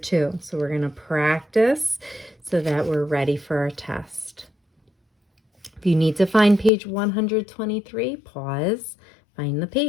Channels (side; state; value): right; drops out; at 6.7 s